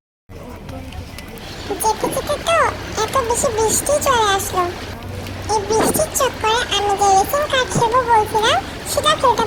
যেতে যেতে তো এত বেশি বৃষ্টি চলে আসলো। এই বৃষ্টির চক্করে আমি যে রেসিং কার খেলবো বলছিলাম সেটা খেলতে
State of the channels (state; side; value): identical; both; correlation 1.00